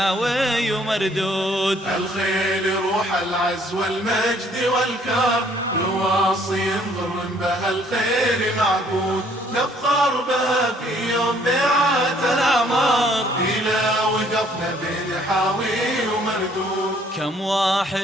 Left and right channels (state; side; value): normal; both; correlation 0.62